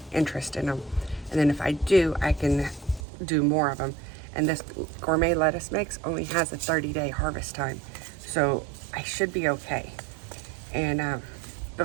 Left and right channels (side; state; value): left; drops out; at 3.0 s